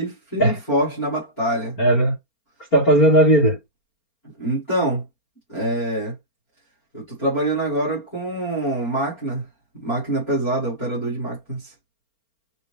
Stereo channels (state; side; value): late; right; 4.4 ms